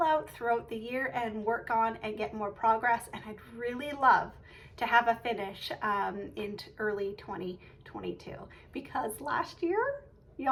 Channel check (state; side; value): identical; both; correlation 1.00